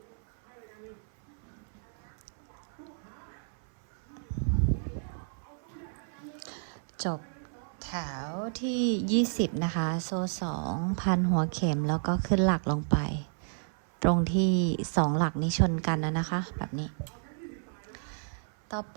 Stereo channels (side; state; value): left; silent; 57 dB below the other